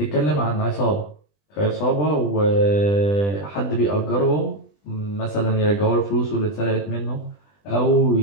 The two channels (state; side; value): late; right; 20 ms